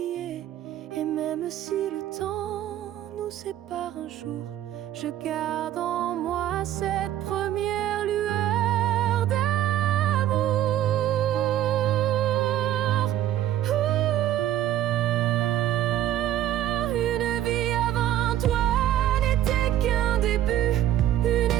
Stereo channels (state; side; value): quieter; left; 12.2 dB